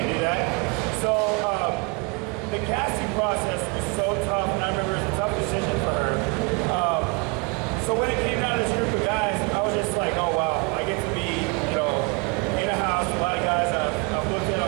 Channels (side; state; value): left; quieter; 30.5 dB